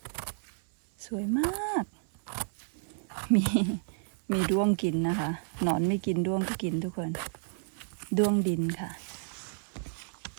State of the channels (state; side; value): silent; left; 57 dB below the other